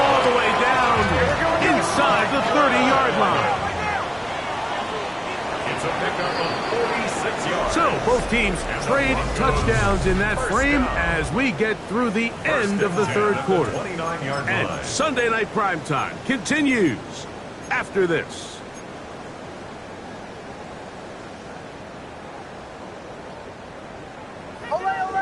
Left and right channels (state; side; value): identical; both; correlation 1.00